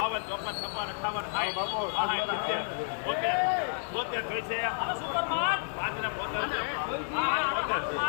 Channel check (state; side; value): silent; right; digital silence